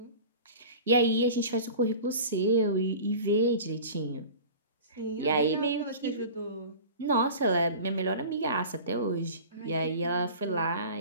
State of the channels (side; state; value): both; inverted; correlation -0.38